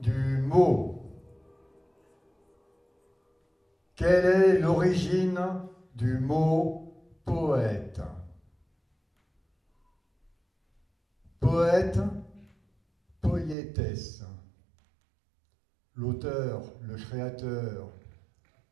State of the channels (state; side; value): drops out; left; at 13.6 s